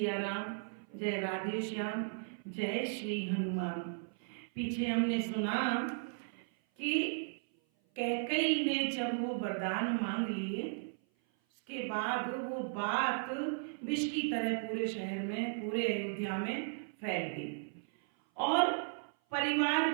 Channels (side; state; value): left; silent; 54 dB below the other